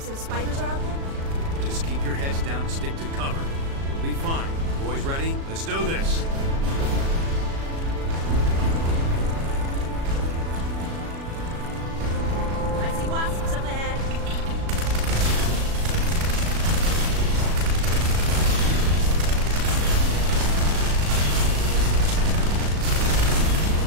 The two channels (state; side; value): late; left; 36 ms